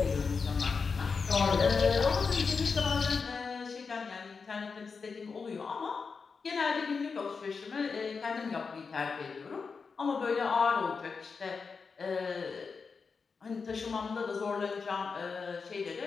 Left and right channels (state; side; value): quieter; right; 5.1 dB